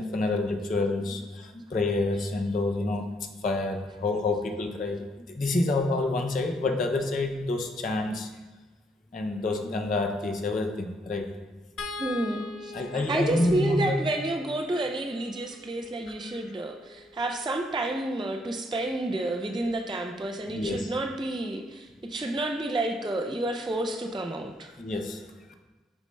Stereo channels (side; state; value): both; normal; correlation 0.70